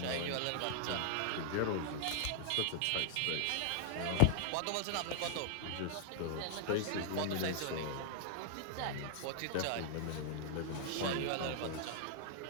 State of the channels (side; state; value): both; different; correlation -0.01